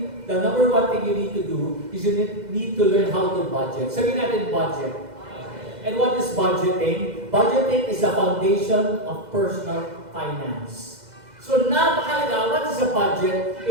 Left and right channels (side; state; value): left; late; 2.0 ms